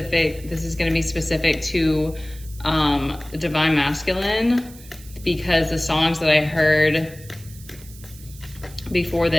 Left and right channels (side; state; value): right; noise; hiss, 20 dB below the sound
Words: This is gonna be specific to Divine Masculine, because the songs that I heard before